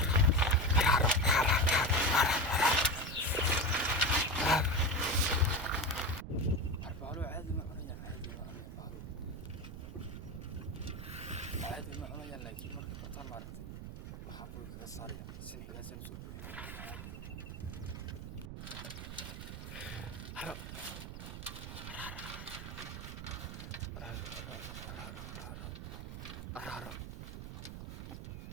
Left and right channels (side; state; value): right; noise; rumble, 9 dB below the sound